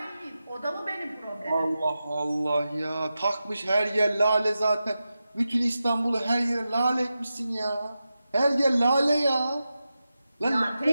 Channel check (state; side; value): inverted; both; correlation -0.92